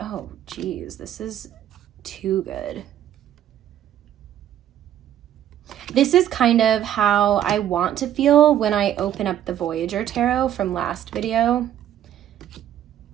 geez, this is too good. This is kind of how I want to feel when I open up the Voyager Tarot from last video.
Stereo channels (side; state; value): left; quieter; 11.2 dB